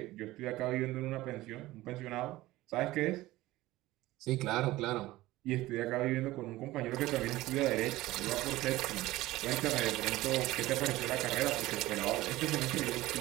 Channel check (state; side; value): quieter; left; 17.6 dB